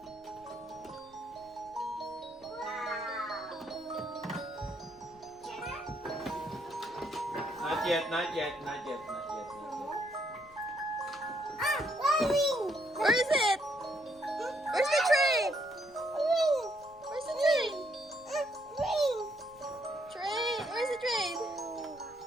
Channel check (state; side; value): noise; left; rumble, 27 dB below the sound